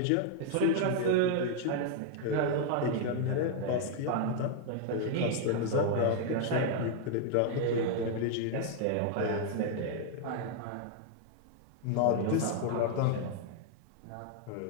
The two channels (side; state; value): both; different; correlation 0.00